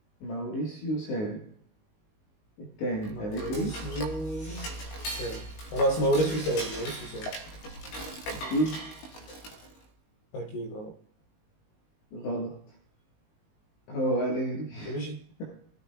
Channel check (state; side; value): late; right; 19 ms